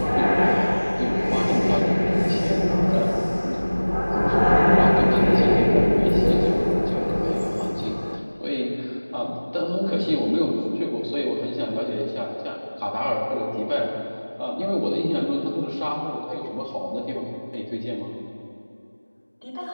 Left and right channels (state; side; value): inverted; both; correlation -1.00